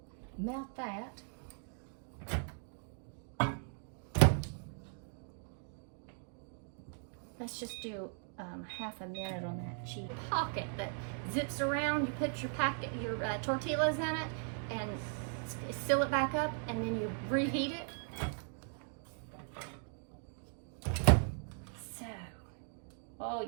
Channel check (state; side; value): silent; left; 52 dB below the other